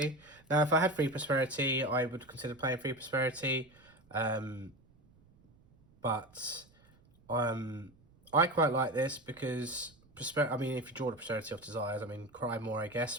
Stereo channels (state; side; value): noise; right; rumble, 29 dB below the sound